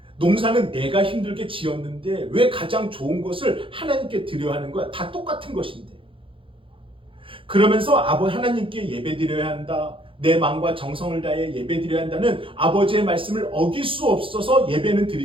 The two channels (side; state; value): left; late; 0.25 ms